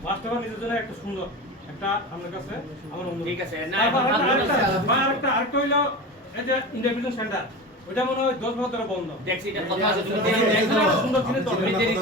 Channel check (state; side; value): normal; both; correlation 0.28